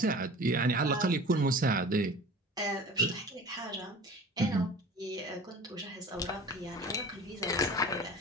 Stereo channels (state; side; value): normal; both; correlation 0.40